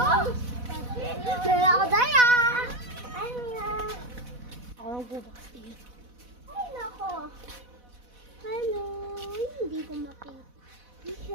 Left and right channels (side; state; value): left; late; 4.1 ms